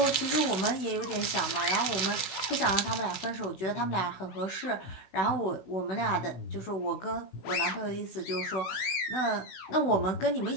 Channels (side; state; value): right; late; 16 ms